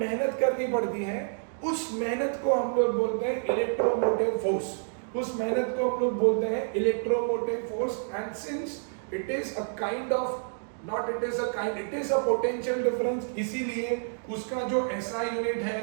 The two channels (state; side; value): silent; left; digital silence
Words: करनी पड़ती है। उस मेहनत को हम लोग बोलते हैं इलेक्ट्रोमोटिव फोर्स, उस मेहनत को हम लोग बोलते हैं electromotive force. And since it is a kind of not it is a kind, it is a potential difference, इसीलिए उसका जो एसआई यूनिट